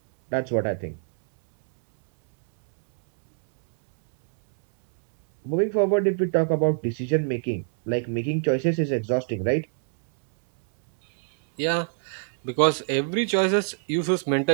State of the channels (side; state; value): left; silent; 62 dB below the other